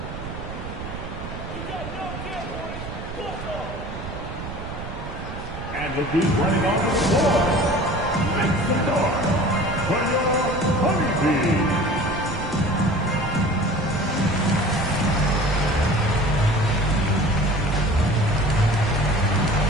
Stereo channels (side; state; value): right; noise; rumble, 10 dB below the sound